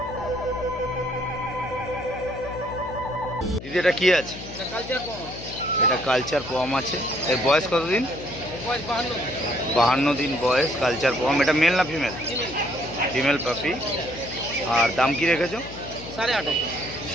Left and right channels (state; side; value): noise; left; hum, 13 dB below the sound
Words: দিদি এটা কি আছে? এটা কালচার পম আছে। এর বয়স কতদিন? 52 দিন বয়স, কালচার পম। এটা মেল না ফিমেল? ফিমেল পাপি। আর দাম কি রেখেছো?